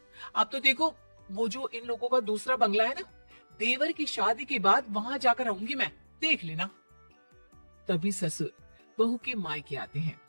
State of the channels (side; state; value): both; inverted; correlation -1.00